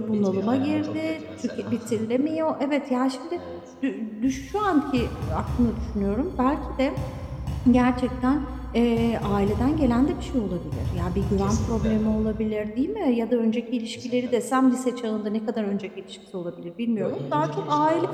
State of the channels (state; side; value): identical; both; correlation 1.00